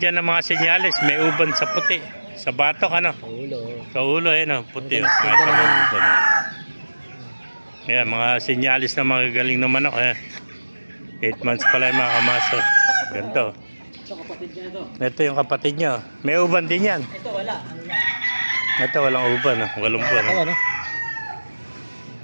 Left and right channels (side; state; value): both; inverted; correlation -1.00